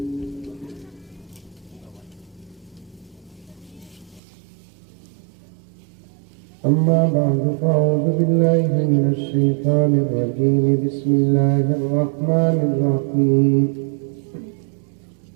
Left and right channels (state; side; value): drops out; left; at 4.2 s